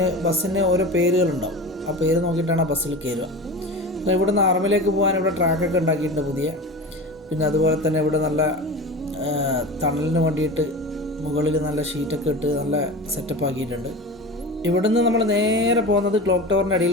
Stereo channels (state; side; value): normal; both; correlation 0.31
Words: ബസ്സിന് ഓരോ പേരുകളുണ്ടാവും. ആ പേര് നോക്കിയിട്ടാണ് ആ ബസ്സിൽ കയറുക. ഇവിടുന്ന് ഹറമിലേക്ക് പോകാൻ ഇവിടെ ട്രാക്കൊക്കെ ഉണ്ടാക്കിയിട്ടുണ്ട് പുതിയ. പിന്നെ അതുപോലെ തന്നെ ഇവിടെ നല്ല തണലിന് വേണ്ടിയിട്ട് മുകളിൽ നല്ല ഷീറ്റൊക്കെ ഇട്ട് നല്ല സെറ്റപ്പ് ആക്കിയിട്ടുണ്ട്. ഇവിടുന്ന് നമ്മൾ നേരെ പോകുന്നത് ക്ലോക്ക് ടവറിൻ്റെ